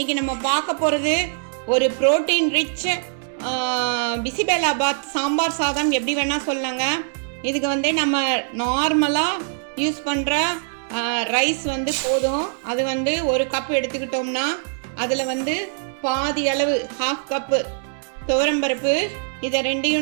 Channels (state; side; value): silent; left; 64 dB below the other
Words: நம்ம பார்க்க போகிறது ஒரு புரோட்டீன் ரிச் பிசிபெலாபாத் சாம்பார் சாதம். எப்படி வேணால் சொல்லலாங்க. இதுக்கு வந்து நம்ம நார்மலாக யூஸ் பண்ணுற ரைஸ் வந்து போதும். அது வந்து ஒரு கப் எடுத்துக்கிட்டோம்னா அதில் வந்து பாதி அளவு ஹாஃப் கப்பு துவரம்பருப்பு, இதை